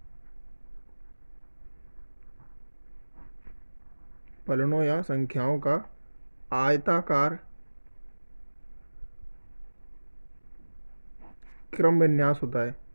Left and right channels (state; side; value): inverted; both; correlation -1.00